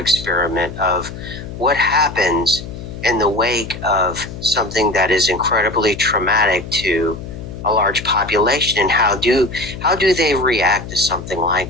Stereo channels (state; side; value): noise; left; hum, 11 dB below the sound